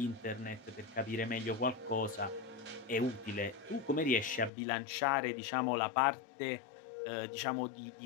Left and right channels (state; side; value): drops out; right; at 4.5 s